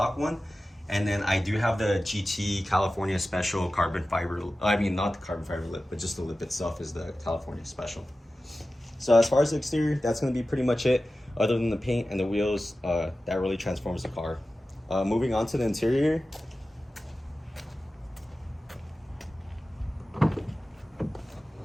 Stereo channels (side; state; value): both; normal; correlation 0.95